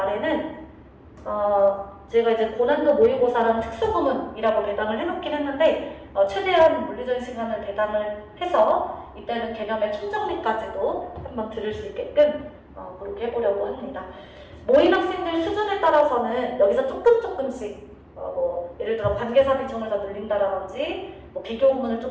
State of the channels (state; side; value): identical; both; correlation 1.00